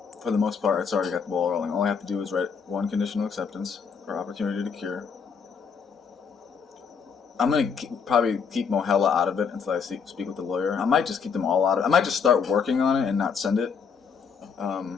for the most part, it's already got the ball rolling. All I have to do is write one conditional acceptance for opportunity to cure. I'm going to probably keep Mohela out of it until I speak with the lawyer. I might just keep them all out of it. I might just start working on it and not send it.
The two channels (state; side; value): quieter; right; 6.2 dB